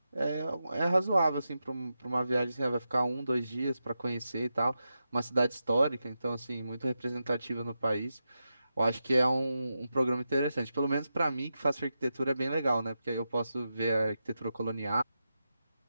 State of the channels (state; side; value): inverted; both; correlation -0.89